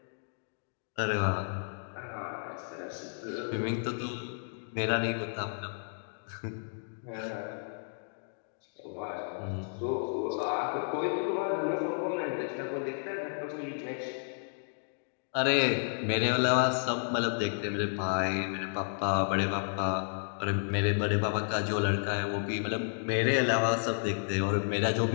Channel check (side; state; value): right; silent; digital silence